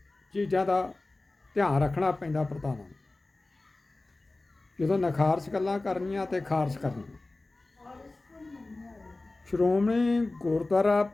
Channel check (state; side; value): quieter; right; 3.0 dB